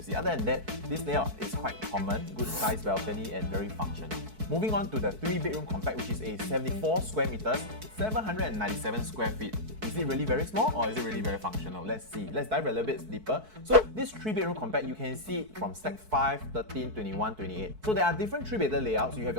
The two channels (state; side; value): late; left; 4.6 ms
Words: Other than that, this layout is quite common, good size balcony and very functional. Moving on to the 3-bedroom compact, which is a 74 square meters, 797 square feet. Is it really very small or is it really very functional? Let's see. Let's dive a little bit deeper. So this 3-bedroom compact, you can see it from Stack 5, 13, 21, 28. So there are different 3-bedder layouts. You have